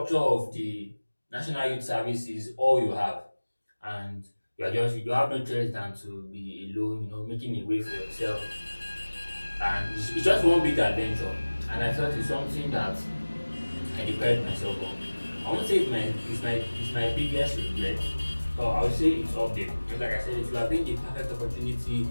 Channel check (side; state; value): both; inverted; correlation -1.00